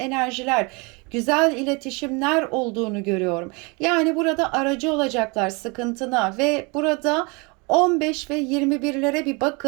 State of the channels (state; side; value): quieter; left; 29.4 dB